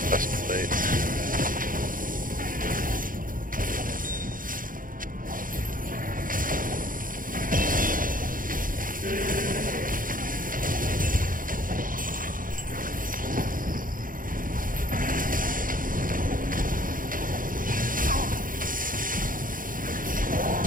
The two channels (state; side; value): late; left; 0.40 ms